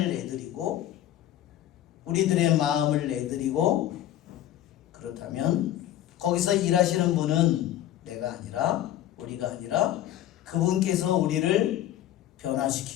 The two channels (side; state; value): right; quieter; 12.6 dB